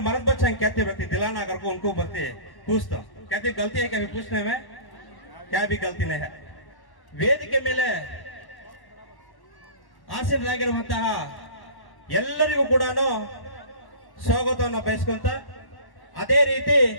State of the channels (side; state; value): right; late; 1.1 ms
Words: मर्द बच्चे कहते रहते दिलाना अगर को उनको बरते पूछता कहते गलती है क्या भी पूछने में, क्या भी गलती नहीं है। ವೇದಿಕೆ ಮೇಲೆ ಆಸೀನರಾಗಿರುವಂತಹ ಎಲ್ಲರಿಗೂ ಕೂಡ ಸ್ವಾಗತವನ್ನು ಬಯಸ್ಕೊಂತ, ಅದೇ ರೀತಿ